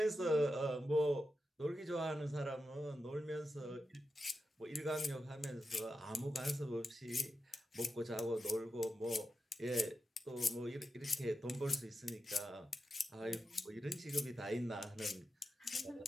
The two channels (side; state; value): both; normal; correlation 0.90